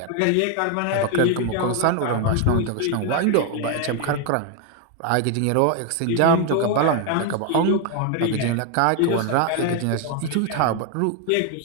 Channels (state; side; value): different; both; correlation 0.01